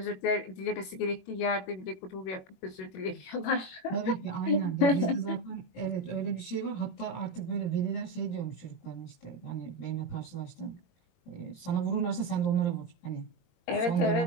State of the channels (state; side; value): late; right; 21 ms